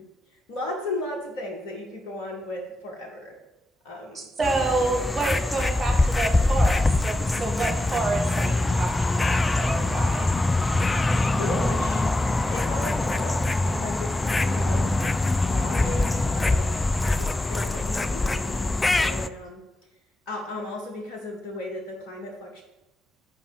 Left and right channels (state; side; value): normal; both; correlation 0.90